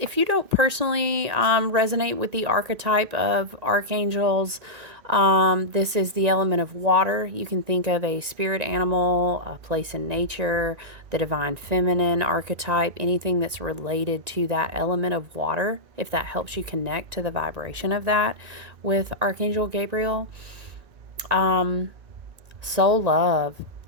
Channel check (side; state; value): left; late; 1.9 ms